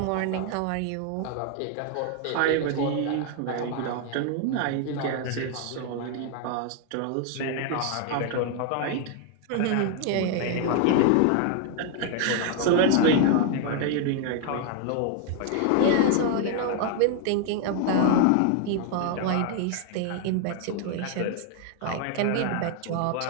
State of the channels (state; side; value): different; both; correlation 0.00